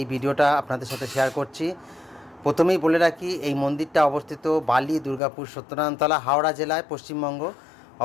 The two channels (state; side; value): drops out; right; at 5.2 s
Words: ভিডিওটা আপনাদের সাথে শেয়ার করছি। প্রথমেই বলে রাখি, এই মন্দিরটা অবস্থিত বালি, দুর্গাপুর, সত্যনারায়ণতলা, হাওড়া জেলায়, পশ্চিমবঙ্গ